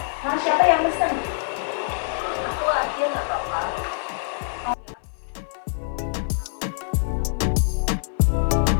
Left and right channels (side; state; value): right; silent; digital silence